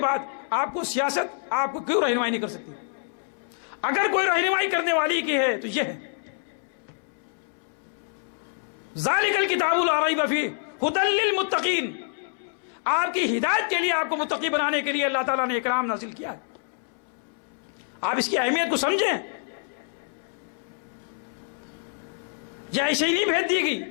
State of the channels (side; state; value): right; silent; 60 dB below the other